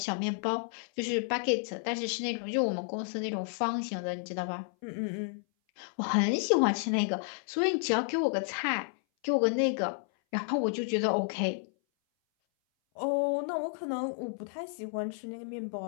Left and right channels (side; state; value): right; silent; 57 dB below the other